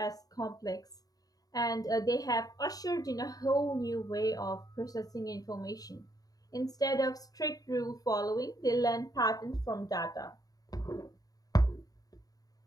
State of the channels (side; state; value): right; late; 0.18 ms